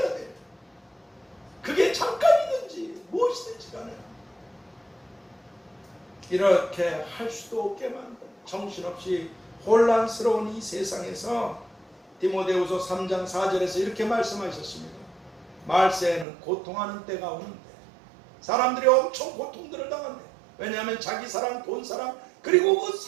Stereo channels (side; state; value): left; drops out; at 16.2 s